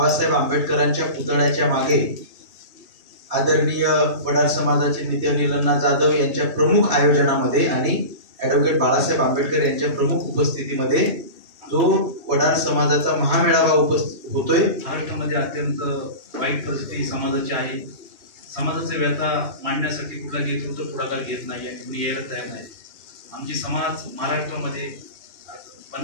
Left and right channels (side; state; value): left; late; 3.2 ms